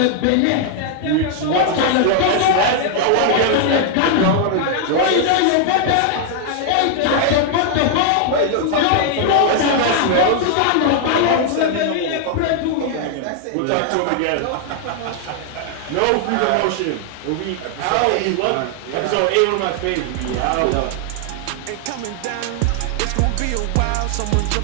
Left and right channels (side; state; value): both; different; correlation 0.00